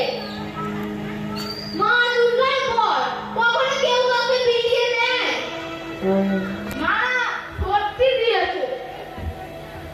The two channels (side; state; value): both; identical; correlation 1.00